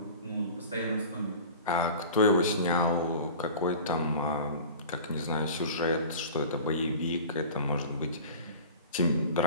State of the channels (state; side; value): inverted; both; correlation -0.38